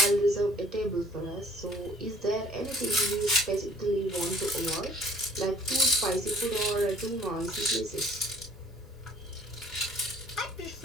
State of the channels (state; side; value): normal; both; correlation 0.55